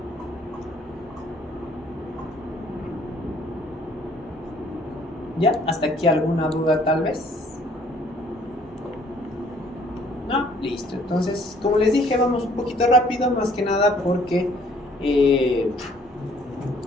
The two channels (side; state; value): both; normal; correlation 0.59